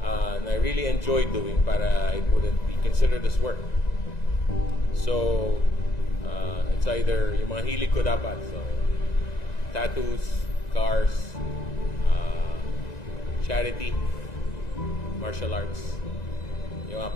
and I really enjoyed doing para it wouldn't be considered as work. So, it's either yung mga hilig ko dapat. So, tattoos, cars, charity, martial arts, yung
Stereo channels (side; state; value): right; late; 1.9 ms